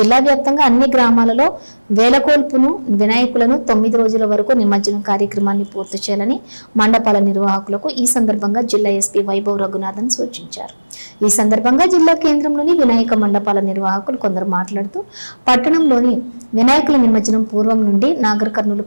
వ్యాప్తంగా అన్ని గ్రామాలలో వేలకోల్పును వినాయకులను 9 రోజుల వరకు నిమజ్జనం కార్యక్రమాన్ని పూర్తి చేయాలని మండపాల నిర్వాహకులకు ఈ సందర్భంగా జిల్లా ఎస్పీ వైభవ్ రఘునాథన్ సూచించారు. ఈ సందర్భంగా జిల్లా కేంద్రంలోని వినాయక మండపాల నిర్వాహకులు కొందరు మాట్లాడుతూ పట్టణంలోని వినాయకుల నిమజ్జనం పూర్వం నుండి నాగర్ కర్నూలు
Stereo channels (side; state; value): both; inverted; correlation -1.00